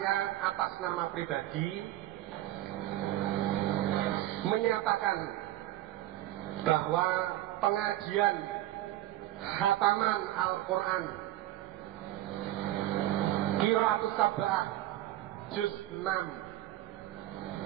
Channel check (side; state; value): left; quieter; 14.7 dB